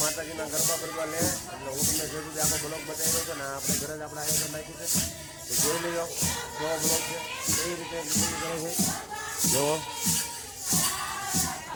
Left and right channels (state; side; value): identical; both; correlation 1.00